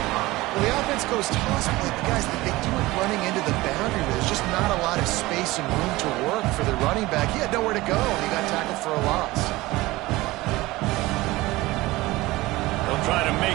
Well, the offense goes toss play, but guys, they do it running into the boundary. There's just not a lot of space and room to work for the running back. He had nowhere to go, and he got tackled for a loss. They'll try to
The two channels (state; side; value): quieter; left; 19.5 dB